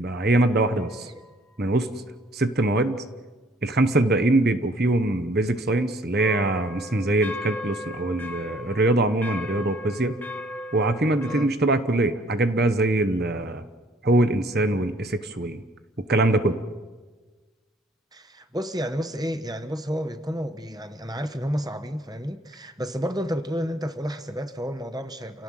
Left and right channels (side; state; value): both; normal; correlation 0.61